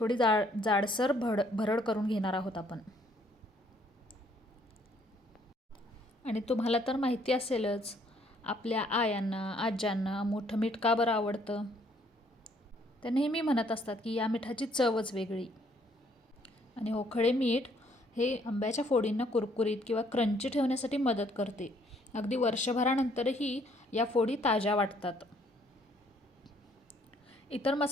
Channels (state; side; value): normal; both; correlation 0.65